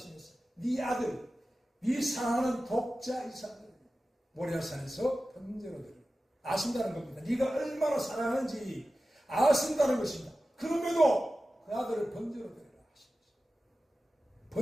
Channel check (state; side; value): normal; both; correlation 0.95